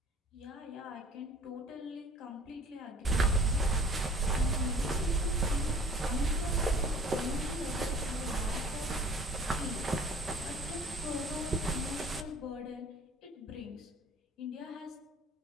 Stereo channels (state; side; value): normal; both; correlation 0.49